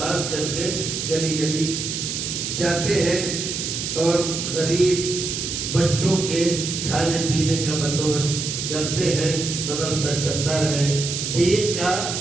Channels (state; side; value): noise; right; hiss, 3 dB below the sound